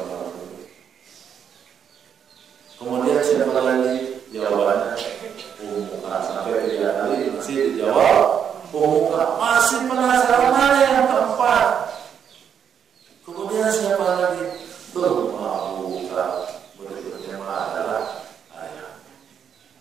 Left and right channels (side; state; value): left; quieter; 8.1 dB